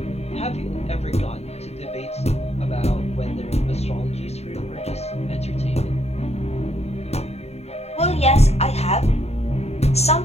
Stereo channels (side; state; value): right; late; 0.31 ms